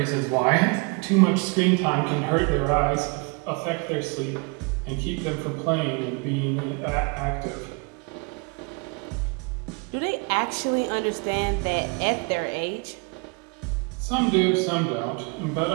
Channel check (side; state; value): left; quieter; 31.3 dB